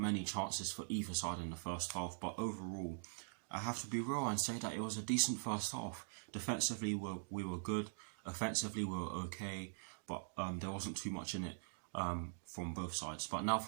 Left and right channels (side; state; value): left; silent; digital silence